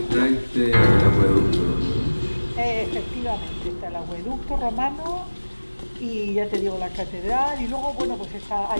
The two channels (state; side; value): inverted; both; correlation -1.00